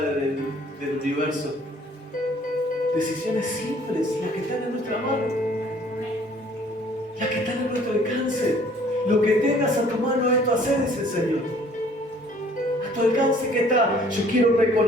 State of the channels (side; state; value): both; normal; correlation 0.56